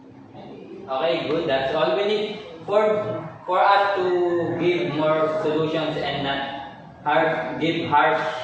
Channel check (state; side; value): identical; both; correlation 1.00